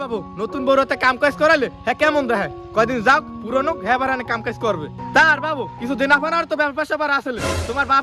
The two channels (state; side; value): identical; both; correlation 1.00